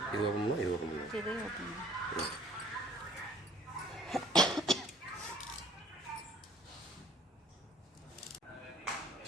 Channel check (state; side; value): normal; both; correlation 0.53